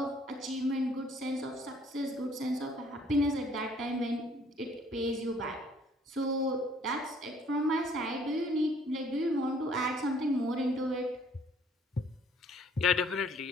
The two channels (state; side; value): normal; both; correlation 0.59